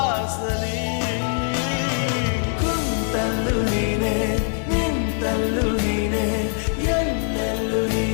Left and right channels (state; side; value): silent; right; 64 dB below the other